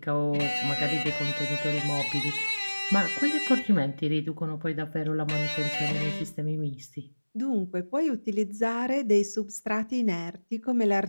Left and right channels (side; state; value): both; inverted; correlation -1.00